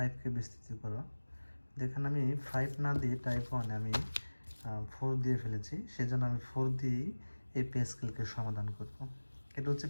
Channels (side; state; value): both; inverted; correlation -1.00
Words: বিস্তৃত করো। যেখানে আমি 5 না দিয়ে টাইপ ওয়ানে আমি 4 দিয়ে ফেলেছি, সেজন্য আমি 4 দিয়েই এই প্যাসকেলকে সমাধান করব। এটা হচ্ছে